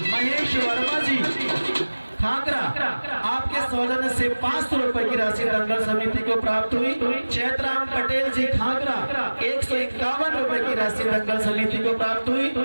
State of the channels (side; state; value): both; inverted; correlation -1.00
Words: महेश वर्मा जी खाकरा आपके सौजन्य से 500 रुपए की राशि दंगल समिति को प्राप्त हुई। चैतराम पटेल जी खाकरा 151 रुपए की राशि दंगल समिति को प्राप्त हुई।